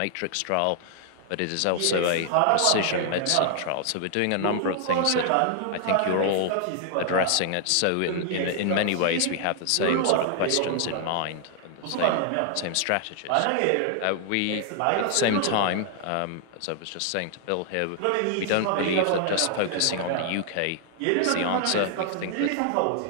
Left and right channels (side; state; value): both; different; correlation 0.00